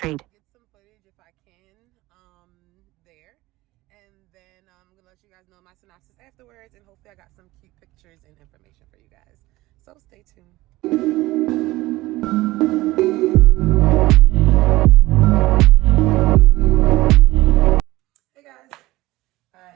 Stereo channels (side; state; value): left; quieter; 18.7 dB